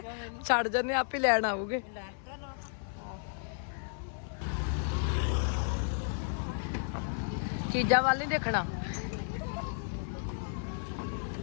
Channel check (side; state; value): right; silent; 56 dB below the other